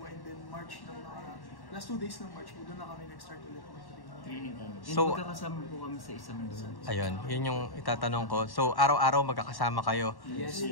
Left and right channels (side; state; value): right; late; 1.1 ms